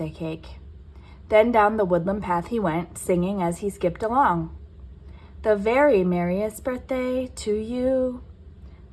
cake. Then down the woodland path he went, singing as he skipped along. The very merriest birthday to you.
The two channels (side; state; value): both; identical; correlation 1.00